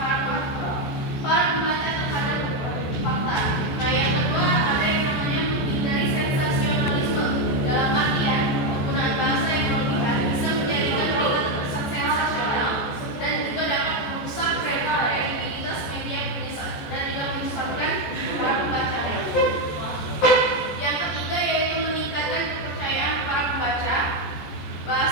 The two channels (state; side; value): late; right; 14 ms